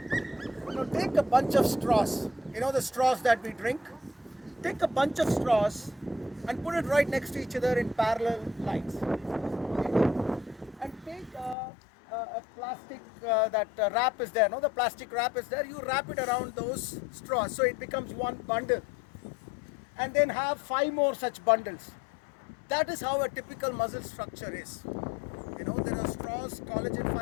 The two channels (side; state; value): right; drops out; at 11.6 s